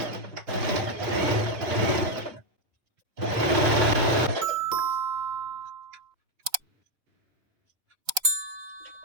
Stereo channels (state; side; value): late; left; 3.9 ms